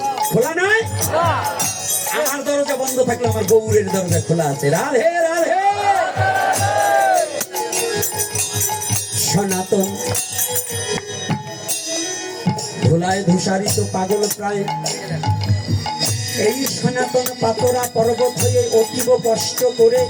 খোলা নয়? আমার দরজা বন্ধ থাকলে আমার গৌরের দরজা খোলা আছে। রাধে রাধে। সনাতন ধুলায় ধূসারিত পাগল প্রায়, এই সনাতন পাতরা পর্বত হয়ে অতীব কষ্ট করে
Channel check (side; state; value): both; identical; correlation 1.00